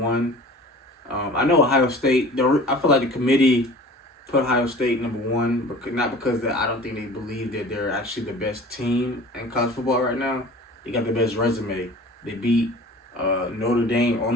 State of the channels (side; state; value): both; normal; correlation 0.43